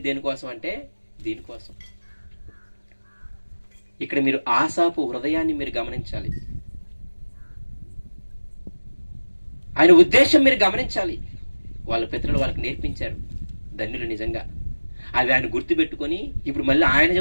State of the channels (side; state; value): both; inverted; correlation -1.00